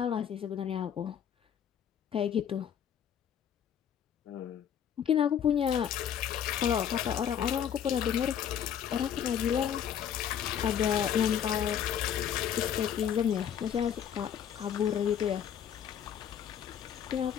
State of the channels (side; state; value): right; quieter; 9.0 dB